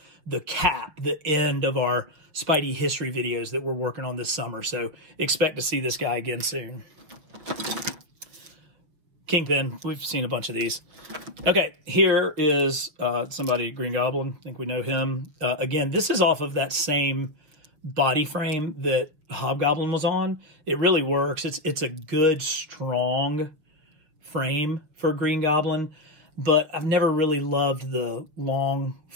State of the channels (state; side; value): late; left; 6.4 ms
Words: cap, the end of our Spidey history videos that we're working on this summer. So expect to see this guy again soon. Kingpin, we've seen a bunch of these. Okay, here is somebody, Green Goblin. I think we know him. Again, this is off of that same body frame that Hobgoblin was on. It really works. It's a good, strong frame for Green Goblin, but I've never really loved the long,